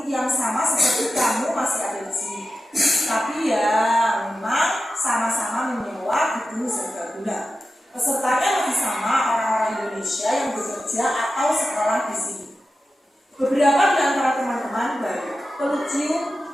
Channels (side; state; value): both; normal; correlation 0.92